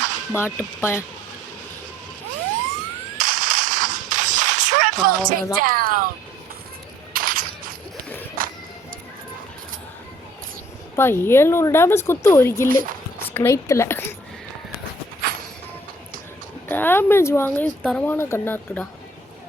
பாட்டு பையன் அப்பா 700 டேமேஜ் குத்து ஒரு கில்லு ஸ்னைத்தில் டேமேஜ் வாங்க தரமான கண்ணாக இருக்குடா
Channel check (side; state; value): both; normal; correlation 0.57